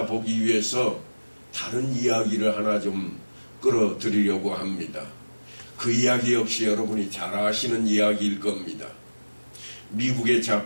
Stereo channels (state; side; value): inverted; both; correlation -1.00